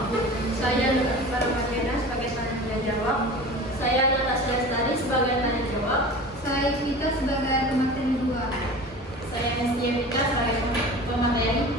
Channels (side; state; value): both; normal; correlation 0.36